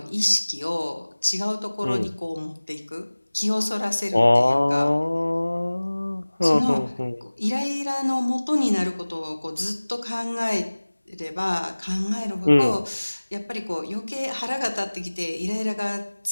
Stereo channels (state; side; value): inverted; both; correlation -1.00